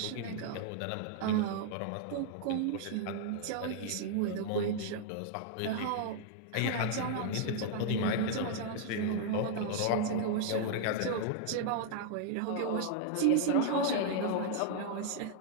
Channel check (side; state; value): both; different; correlation -0.01